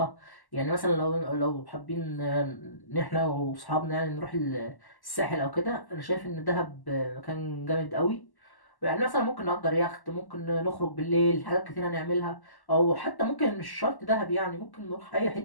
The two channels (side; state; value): right; late; 1.1 ms